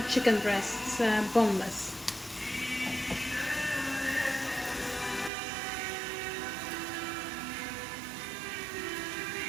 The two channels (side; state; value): left; drops out; at 5.3 s